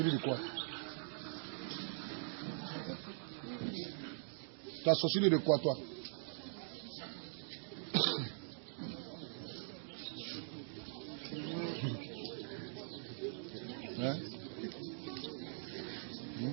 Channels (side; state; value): left; silent; digital silence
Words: de quoi? Tu as sorcelé de quoi, toi? Hein?